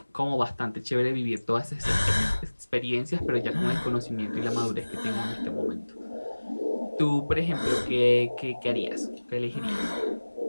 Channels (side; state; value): both; inverted; correlation -1.00